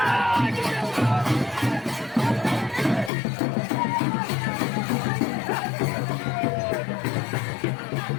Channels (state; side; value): drops out; right; at 3.1 s